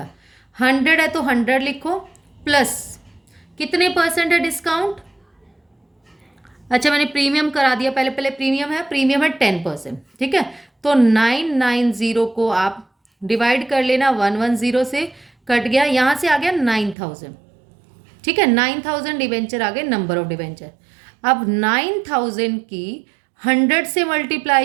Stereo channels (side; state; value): left; drops out; at 16.9 s